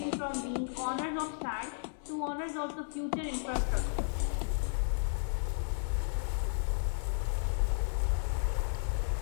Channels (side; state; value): right; silent; 55 dB below the other